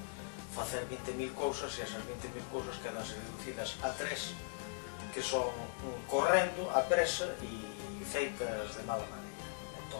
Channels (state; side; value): silent; right; digital silence